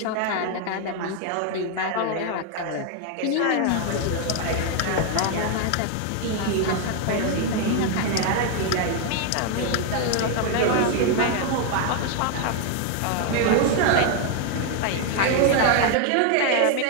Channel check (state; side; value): different; both; correlation 0.01